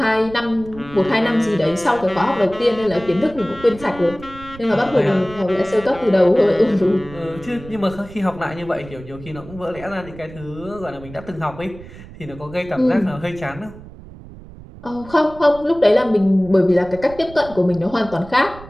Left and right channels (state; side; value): noise; right; rumble, 17 dB below the sound